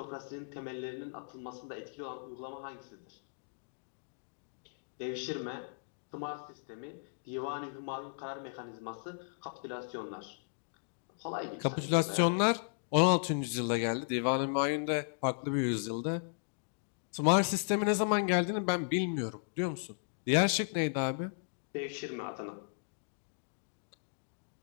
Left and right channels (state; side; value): silent; right; digital silence